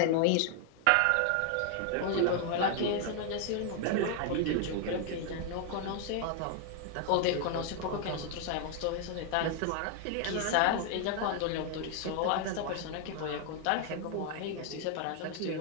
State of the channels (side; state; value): both; different; correlation 0.00